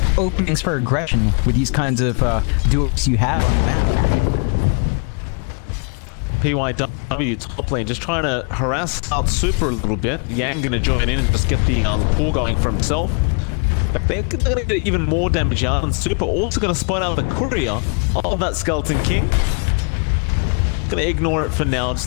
openings for aggression with these kinds of duos you have on the map. PYW top lane just trying to harass out Super a little bit. Yang going to join in and just get the pull going for himself. But they're going to get even more damage out, and Super also going to spot out the courier of that Skeleton King. Going to ignore it for now,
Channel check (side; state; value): right; quieter; 38.7 dB